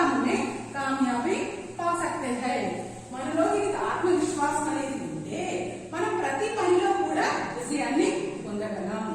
में कामयाबी पा सकते हैं. మనలో ఆత్మవిశ్వాసం అనేది ఉంటే మనం ప్రతి పనిలో కూడా విజయాన్ని పొందగలం.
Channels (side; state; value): both; identical; correlation 1.00